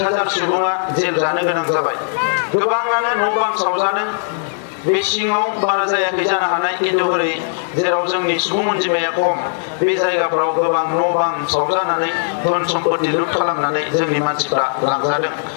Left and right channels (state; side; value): silent; right; 62 dB below the other